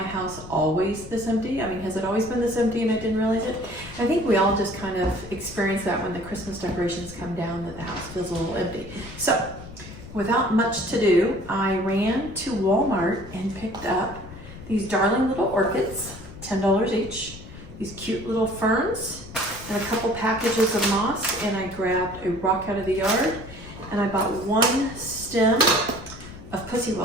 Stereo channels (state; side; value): noise; left; rumble, 15 dB below the sound